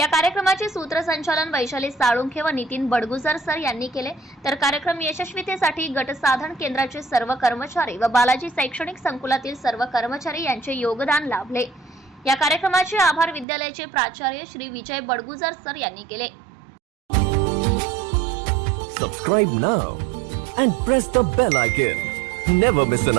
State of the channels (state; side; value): drops out; left; at 13.5 s